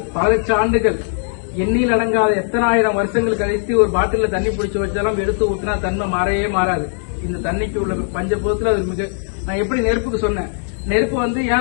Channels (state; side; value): silent; right; 67 dB below the other